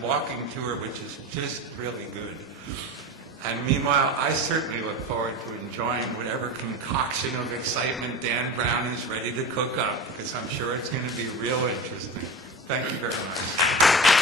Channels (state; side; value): normal; both; correlation 0.28